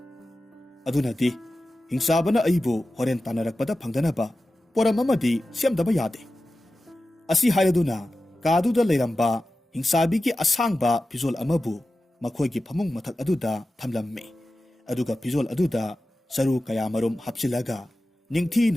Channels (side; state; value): both; normal; correlation 0.94